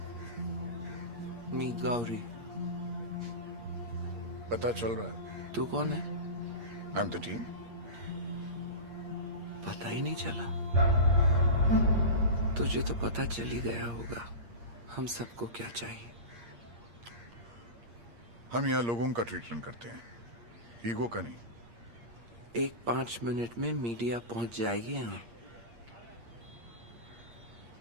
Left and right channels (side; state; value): left; late; 8.6 ms